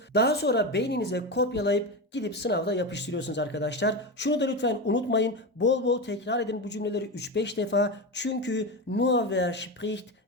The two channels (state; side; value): normal; both; correlation 0.19